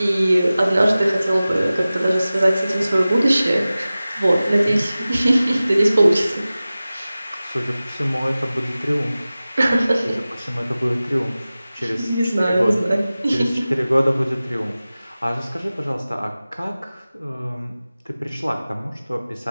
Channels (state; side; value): inverted; both; correlation -0.97